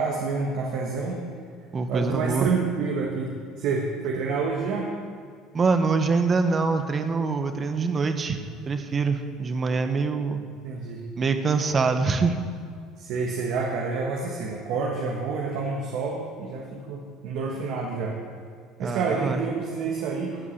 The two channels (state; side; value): quieter; left; 4.0 dB